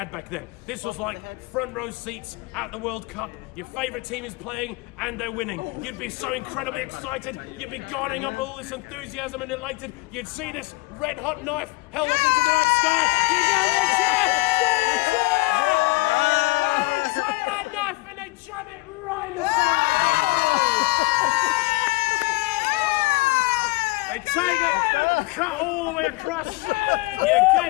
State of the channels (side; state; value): right; quieter; 22.8 dB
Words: back then. This was like front row seats at the World Cup. Your favourite team is playing and they're winning. You'd be so incredibly excited. You'd be guarding up all this enthusiasm and elated. You'd see this red hot knife held up into the night sky. You go, they cheer! They take that knife and they jam it right in the side. They take it, cut all the way across. You